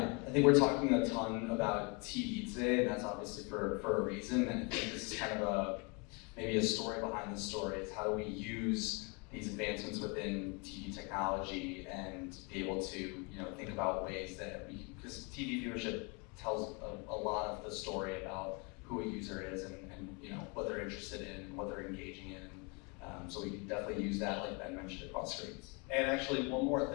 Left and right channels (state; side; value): quieter; right; 31.2 dB